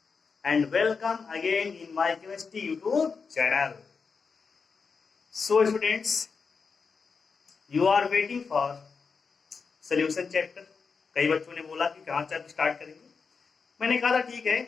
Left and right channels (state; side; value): quieter; right; 5.2 dB